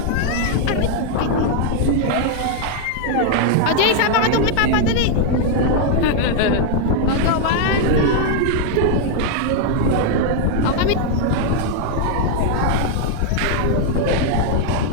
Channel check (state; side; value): different; both; correlation 0.00